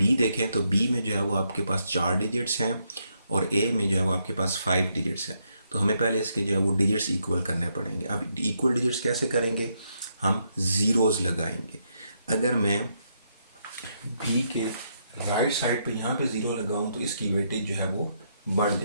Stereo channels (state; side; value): inverted; both; correlation -0.77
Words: देखें तो बी में जो है वो आपके पास 4 डिजिट्स हैं और ए में जो है वो आपके पास 5 डिजिट्स हैं। तो हमें पहले इसके जो है वो डिजिट्स इक्वल करने पड़ेंगे। अब इक्वल डिजिट्स कैसे करेंगे, हम ज़ीरोज़ लगाएंगे। अगर मैं बी के राइट साइड पे यहाँ पे ज़ीरो लगाऊँ तो इसकी वेटेज जो है वो बढ़